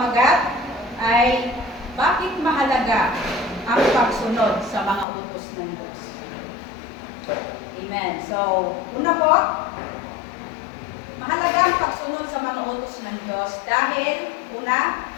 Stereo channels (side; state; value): right; drops out; at 5.1 s